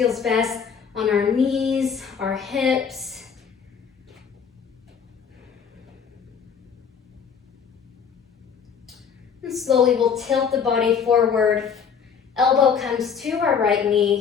best on our knees, our hips. And slowly we'll tilt the body forward. Elbow comes to our right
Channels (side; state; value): right; quieter; 6.7 dB